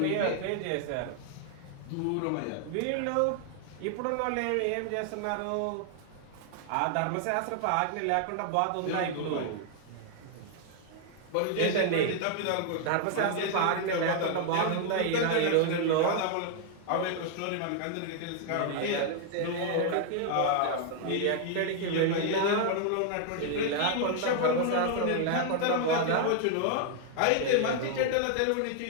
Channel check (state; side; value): different; both; correlation 0.00